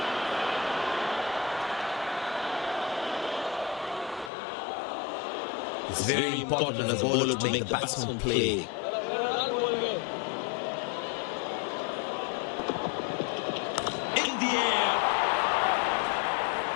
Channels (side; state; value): right; drops out; at 4.3 s